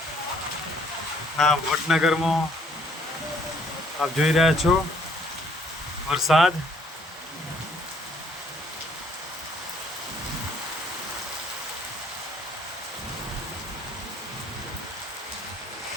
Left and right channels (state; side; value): normal; both; correlation 0.63